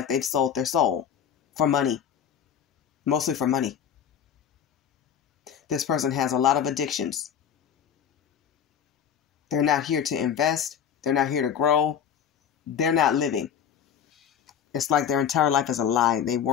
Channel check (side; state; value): right; quieter; 8.5 dB